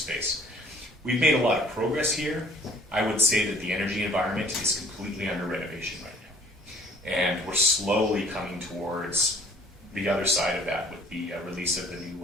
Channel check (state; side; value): normal; both; correlation 0.54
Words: We've made a lot of progress here. I would say that the energy environment is completely under renovation right now. And we're slowly coming towards the other side of that with the release of the